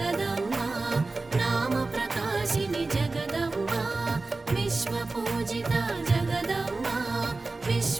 నామ ప్రకాశిని జగదమ్మ, విశ్వపూజిత జగదమ్మ,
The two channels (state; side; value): quieter; left; 3.5 dB